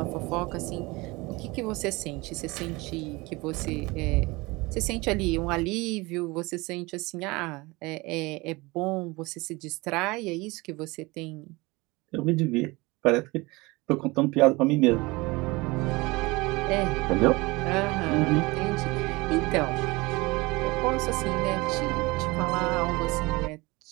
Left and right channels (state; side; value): quieter; left; 23.4 dB